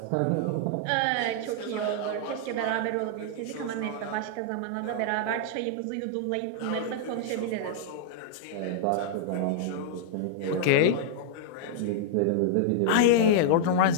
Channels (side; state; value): both; different; correlation -0.01